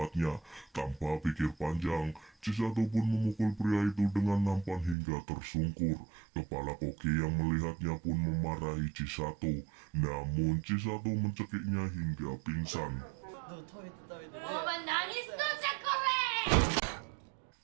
Tanpa pikir panjang, Chisato pun memukul pria itu dengan nampan hingga tersungkur. Kepala koki yang melihatnya pun memarahi Chisato. Namun Chisato mencekiknya hingga pingsan.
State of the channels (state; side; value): drops out; left; at 5.0 s